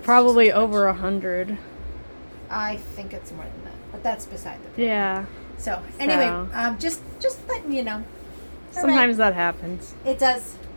Probably just too over much. 100. I think it's more than that, but that's beside the point. Yeah. So anyway, So. just letting you know. All right. Sometimes that happens. It does.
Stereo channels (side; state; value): both; inverted; correlation -1.00